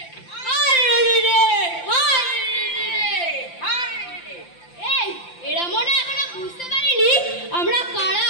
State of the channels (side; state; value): right; late; 5.8 ms